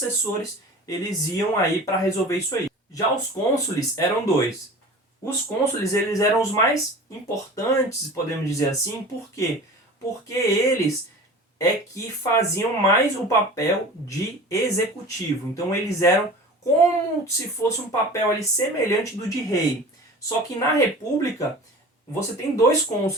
eles iam aí para resolver isso aí. Já os cônsules eram dois. Os cônsules, eles eram os mais importantes, podemos dizer assim. Por quê? Porque eles é que faziam mais o papel de executivo. Então eles eram como se fosse um papel ali semelhante do de rei. Só que na república você tem dois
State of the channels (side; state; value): both; normal; correlation 0.38